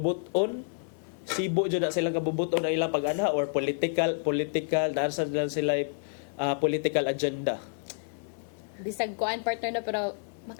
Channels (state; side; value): silent; right; digital silence